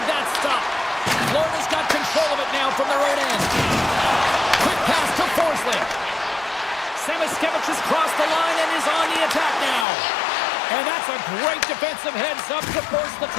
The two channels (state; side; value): drops out; right; at 9.9 s